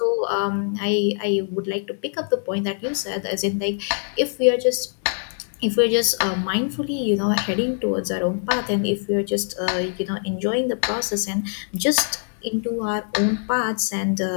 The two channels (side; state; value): right; silent; 63 dB below the other